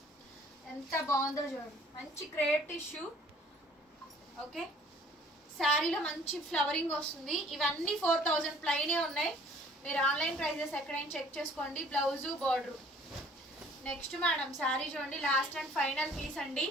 ఎంత బాగుందో చూడండి, మంచి క్రేప్ టిష్యూ. ఓకే, శారీలో మంచి ఫ్లవరింగ్ వస్తుంది. ఇవన్నీ 4000 ప్లైనే ఉన్నాయి. మీరు ఆన్లైన్ ప్రైజెస్ ఎక్కడైనా చెక్ చేసుకోండి. Blouse, border. Next madam sari చూడండి, లాస్ట్ అండ్ ఫైనల్ పీస్ అండి.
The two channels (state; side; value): normal; both; correlation 0.55